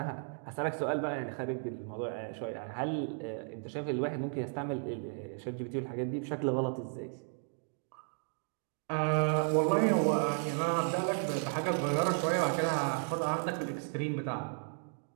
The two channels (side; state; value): left; silent; 55 dB below the other